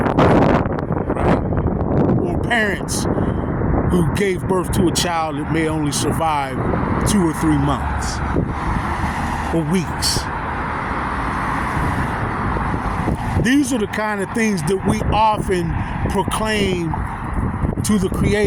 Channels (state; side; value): identical; both; correlation 1.00